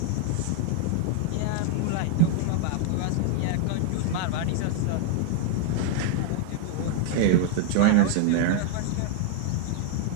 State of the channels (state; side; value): different; both; correlation 0.00